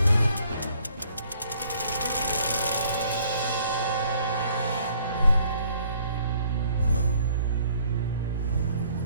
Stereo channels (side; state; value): both; inverted; correlation -0.61